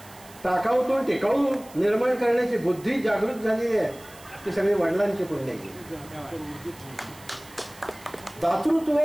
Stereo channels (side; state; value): right; noise; hiss, 22 dB below the sound